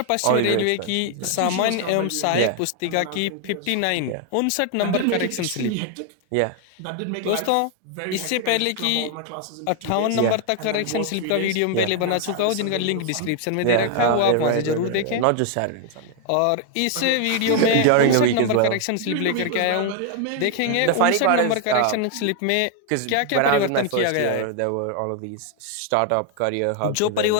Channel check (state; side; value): different; both; correlation 0.00